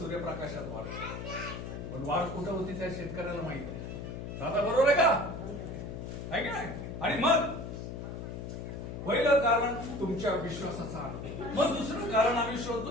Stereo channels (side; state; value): left; noise; hum, 7 dB below the sound